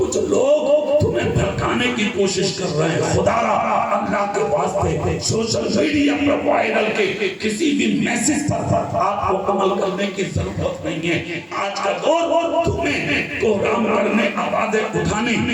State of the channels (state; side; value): identical; both; correlation 1.00